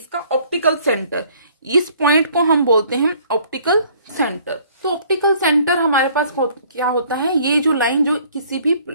ऑप्टिकल सेंटर। इस पॉइंट को हम बोलते हैं ऑप्टिकल सेंटर। तो ऑप्टिकल सेंटर हमारे पास क्या होता है, ये जो लाइन जो किसी भी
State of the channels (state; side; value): inverted; both; correlation -0.58